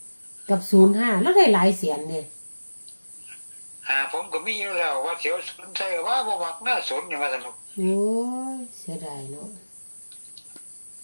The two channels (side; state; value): both; inverted; correlation -1.00